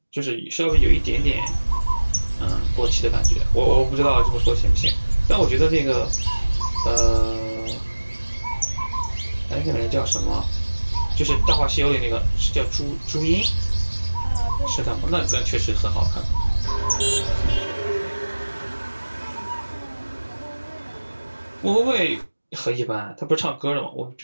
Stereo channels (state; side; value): inverted; both; correlation -1.00